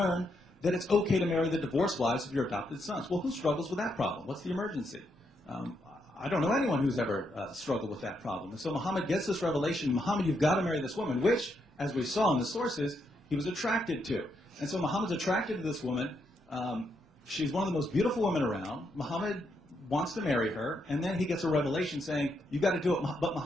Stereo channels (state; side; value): normal; both; correlation 0.79